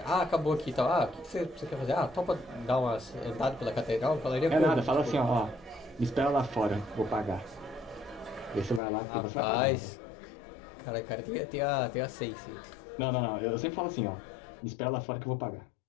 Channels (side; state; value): right; drops out; at 8.8 s